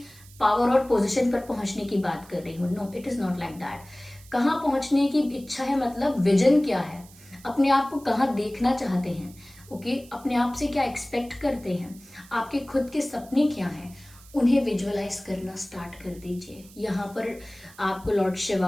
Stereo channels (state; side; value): noise; right; hiss, 23 dB below the sound